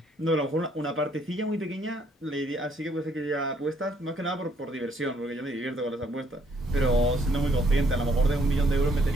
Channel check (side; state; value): both; normal; correlation 0.68